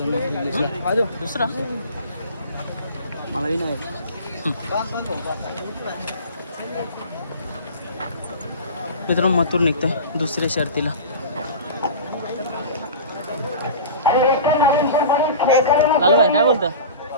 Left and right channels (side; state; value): both; inverted; correlation -0.35